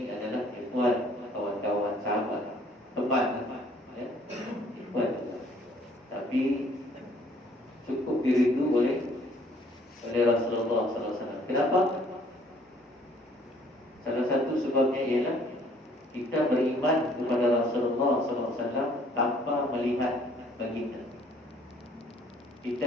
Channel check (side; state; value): both; normal; correlation 0.60